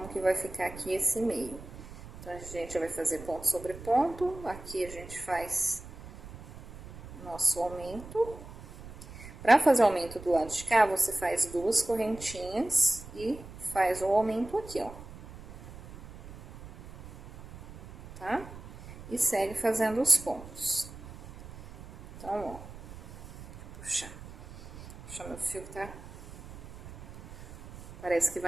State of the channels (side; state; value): right; noise; rumble, 15 dB below the sound